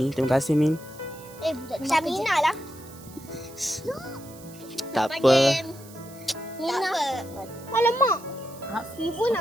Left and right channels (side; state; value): right; noise; hiss, 20 dB below the sound